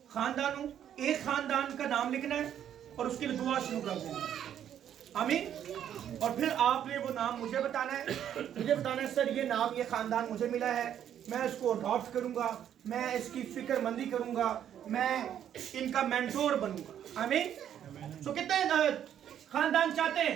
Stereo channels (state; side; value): quieter; left; 9.9 dB